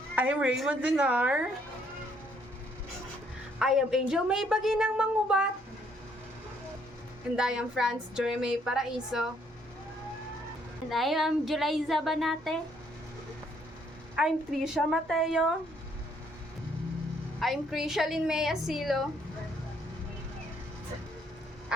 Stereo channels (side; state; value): both; normal; correlation 0.68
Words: I am Raymond Dinar. I am Angel May Baginang Mangubat. And I am Franz Jeremy Paraiso. And I am Julaiza Banate. I'm Trisha Mateo. I'm Krishalyn May Asilo.